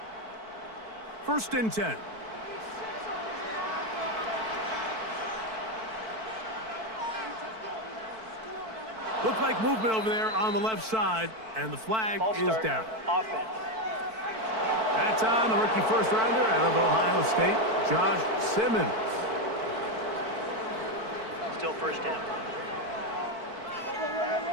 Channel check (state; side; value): late; left; 4.5 ms